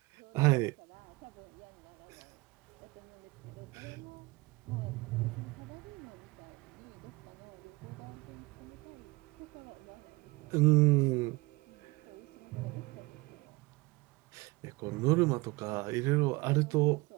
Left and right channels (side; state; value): left; quieter; 23.6 dB